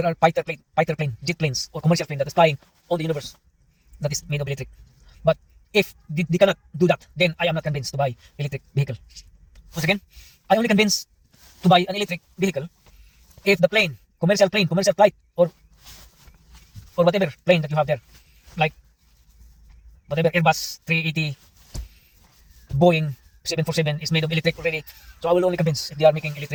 are fighter plane, jet planes, or commercial plane that is flying on the universe that is made of electric. But if they cannot do that, then I am not convinced to buy electric vehicle. Once again, I only convinced to buy an electric vehicle if the plane, commercial flight, or whatever plane that you have there, like whatever Airbus 380, Boeing 747 is made of electric already. So I will only convince if they are making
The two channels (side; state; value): both; identical; correlation 1.00